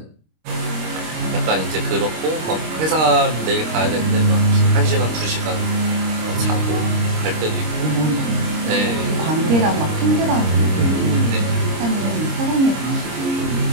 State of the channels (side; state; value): left; late; 26 ms